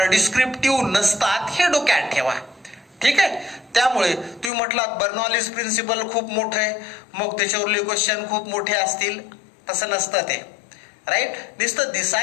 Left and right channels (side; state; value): right; drops out; at 4.5 s